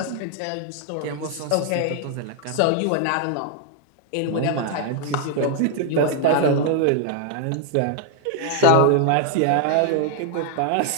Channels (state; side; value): different; both; correlation 0.00